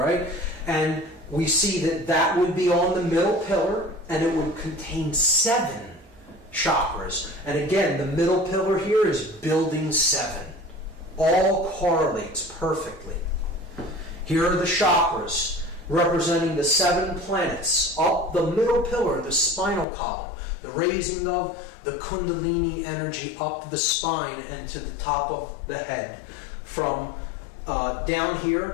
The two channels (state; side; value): drops out; right; at 19.9 s